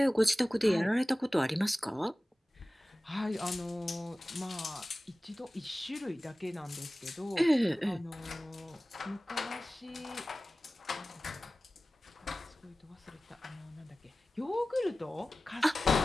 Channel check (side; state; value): both; normal; correlation 0.97